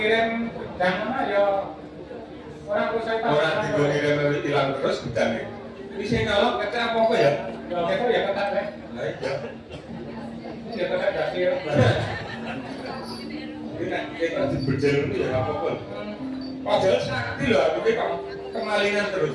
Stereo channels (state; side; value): identical; both; correlation 1.00